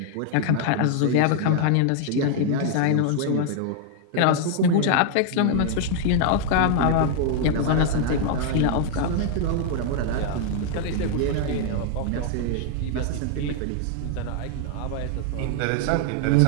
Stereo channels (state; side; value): different; both; correlation 0.00